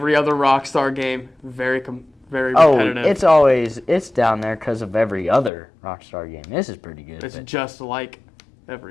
other Rockstar game, very Oh, repetitive. it's down there because of every other Rockstar game. This is pretty good. It's but just like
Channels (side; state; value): right; drops out; at 5.5 s